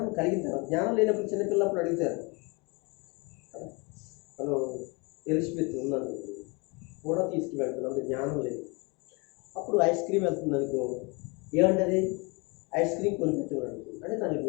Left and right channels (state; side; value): quieter; right; 29.4 dB